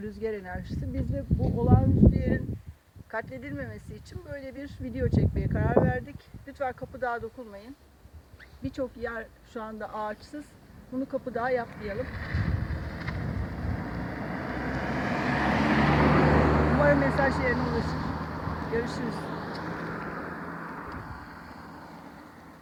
rüzgar enerjisi. Biz de bu olağanüstü yerin katledilmemesi için böyle bir video çekmeye karar verdik. Lütfen Kapıdağ'a dokunmayın. Birçok yer şu anda ağaçsız. Bunu Kapıdağ'a yapmayalım. Umarım mesaj yerine ulaşır. Görüşürüz.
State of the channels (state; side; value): identical; both; correlation 1.00